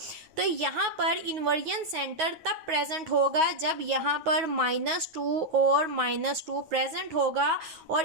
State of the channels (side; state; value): left; late; 9.3 ms